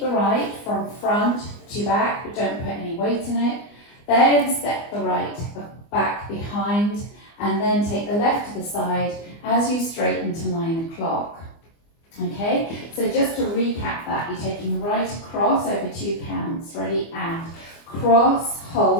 the right from front to back, but don't put any weight in it. Then step the right back behind, and then take the left to the side as you straighten to 9 o'clock. Okay, so just to recap that, you're taking the right across over 2 counts. Ready, and cross,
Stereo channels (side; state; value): right; late; 24 ms